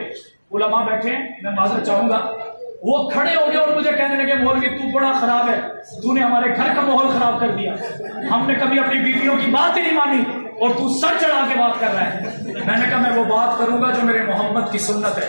علماء بیٹھے ہیں، میں معذرت چاہوں گا، وہ کھڑے ہو گئے اور مجھے کہنے لگے مولوی تو بڑا خراب ہے، تو نے ہمارے گھر کا ماحول خراب کر دیا، ہم نے کبھی اپنی بیویوں کی بات ہی نہیں مانی اور تو سر چڑھا کے بات کر رہا ہے۔ میں نے کہا میں وہ بات کروں گا جو میرے محمد کی سنت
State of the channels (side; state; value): both; inverted; correlation -1.00